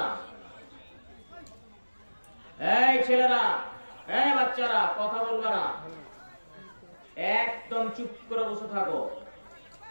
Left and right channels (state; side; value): inverted; both; correlation -1.00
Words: এই ছেলেরা, এই বাচ্চারা, কথা বলবে না, একদম চুপ করে বসে থাকো।